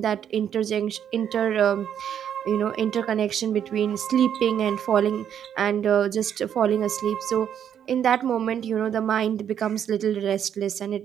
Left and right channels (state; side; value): quieter; left; 9.1 dB